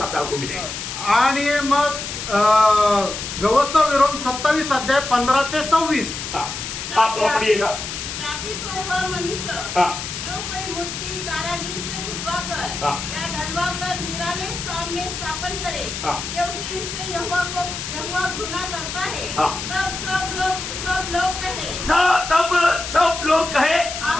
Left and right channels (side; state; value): left; noise; hiss, 6 dB below the sound